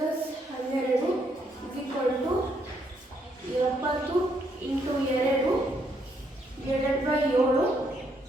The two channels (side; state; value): both; normal; correlation 0.73